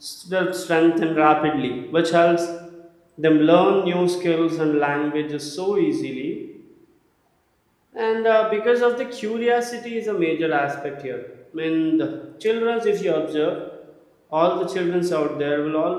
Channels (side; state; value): both; identical; correlation 1.00